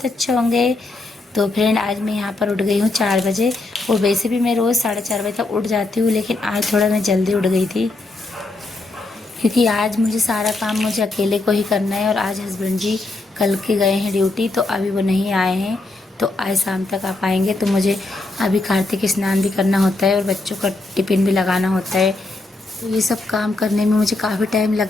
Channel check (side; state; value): right; quieter; 3.1 dB